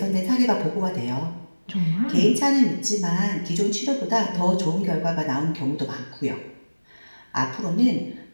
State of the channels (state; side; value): inverted; both; correlation -1.00